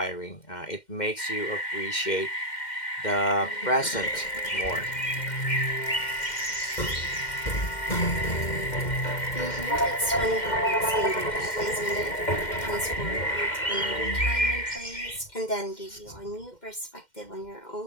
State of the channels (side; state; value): right; late; 2.1 ms